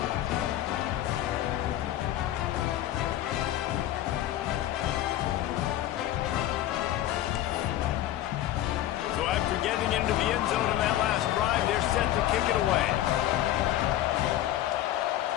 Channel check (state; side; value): quieter; right; 13.1 dB